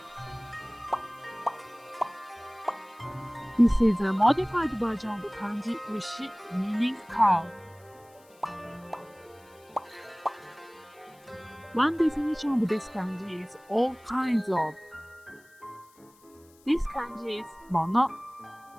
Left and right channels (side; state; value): left; noise; hiss, 29 dB below the sound